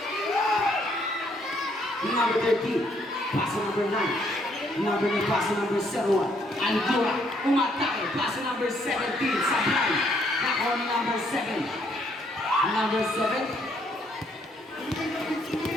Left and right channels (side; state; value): both; normal; correlation 0.69